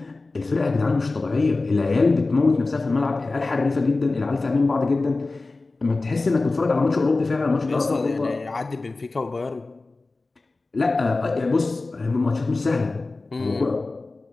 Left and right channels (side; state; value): right; quieter; 3.4 dB